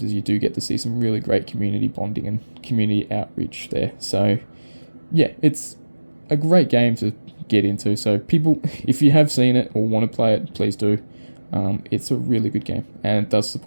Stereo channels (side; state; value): both; inverted; correlation -1.00